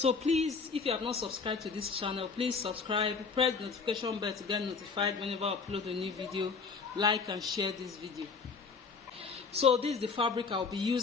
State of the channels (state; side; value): quieter; right; 5.0 dB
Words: please, if you have not subscribed to this channel, please subscribe, press the notification bell to get notified whenever I upload a new video. Like and share this video. So this is the fabric I'll be